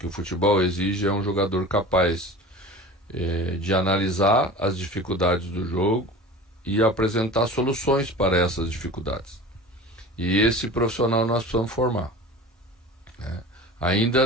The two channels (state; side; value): normal; both; correlation 0.37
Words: o futebol exige, é um jogador capaz de analisar as dificuldades do jogo e apresentar soluções para essas dificuldades. E esse profissional nós precisamos formar, né? Ainda